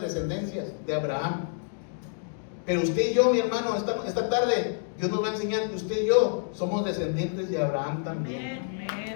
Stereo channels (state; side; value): silent; right; digital silence